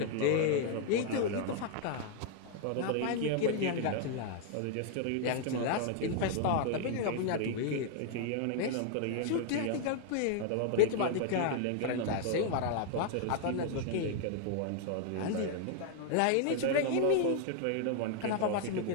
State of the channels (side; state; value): both; different; correlation 0.00